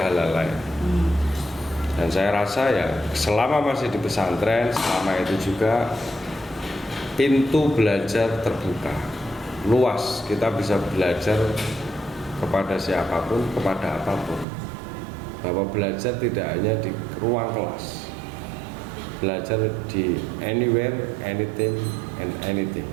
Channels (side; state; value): left; drops out; at 14.5 s